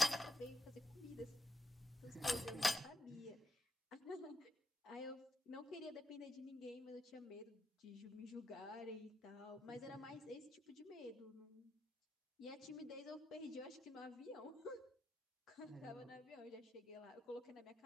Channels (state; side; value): normal; both; correlation 0.84